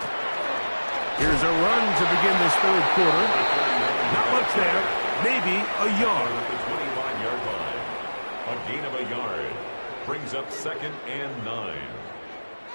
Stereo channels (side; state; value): both; inverted; correlation -1.00